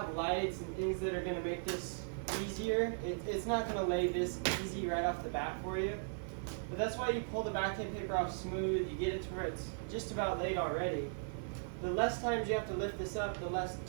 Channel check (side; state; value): left; silent; digital silence